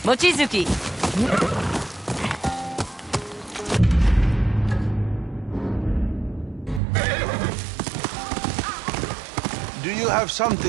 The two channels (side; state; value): left; drops out; at 6.8 s